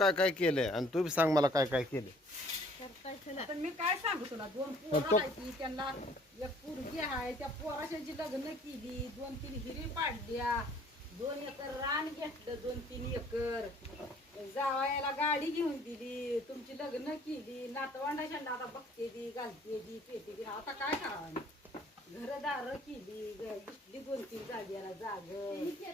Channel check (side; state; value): both; normal; correlation 0.57